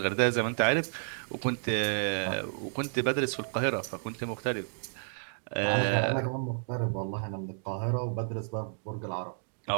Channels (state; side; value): silent; left; digital silence